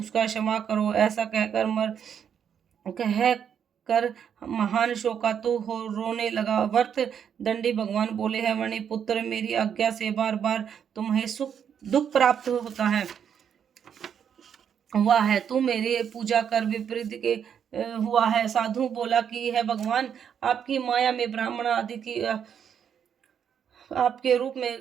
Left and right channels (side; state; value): left; quieter; 8.1 dB